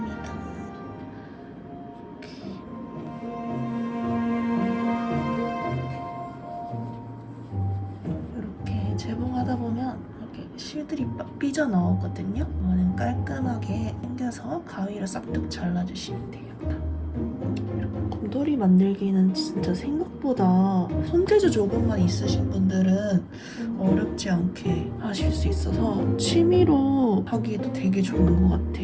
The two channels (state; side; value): identical; both; correlation 1.00